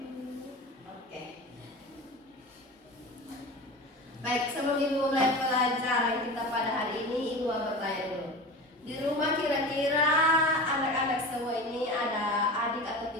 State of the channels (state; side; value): normal; both; correlation 0.31